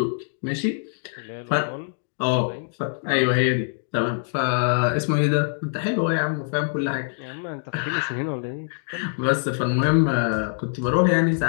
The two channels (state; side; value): silent; right; digital silence